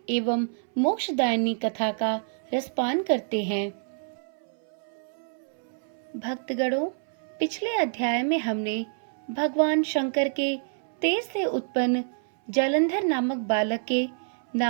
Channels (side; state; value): left; silent; 60 dB below the other